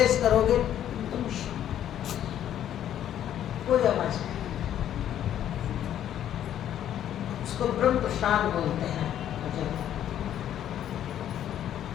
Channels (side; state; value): right; quieter; 10.8 dB